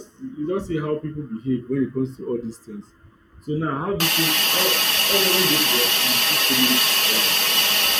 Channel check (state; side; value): identical; both; correlation 1.00